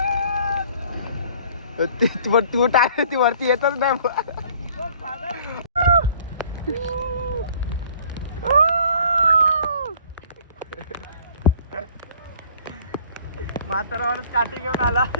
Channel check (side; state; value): both; inverted; correlation -0.54